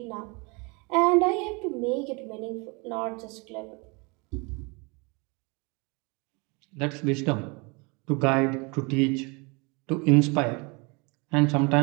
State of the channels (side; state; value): left; quieter; 29.5 dB